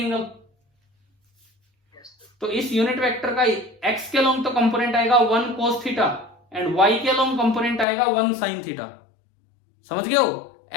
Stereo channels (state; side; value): drops out; right; at 7.9 s